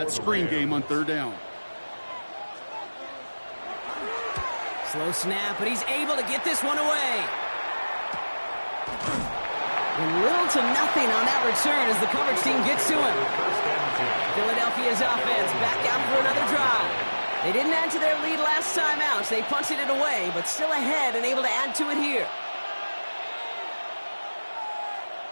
screen game on third down. Slow snap, but he's able to get this one away. And little to nothing on that return as the coverage team gets to him. Philadelphia's offense back out for another drive. They didn't add to their lead last time out, so they punted it away, but still ahead and able to add to it here.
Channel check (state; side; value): inverted; both; correlation -1.00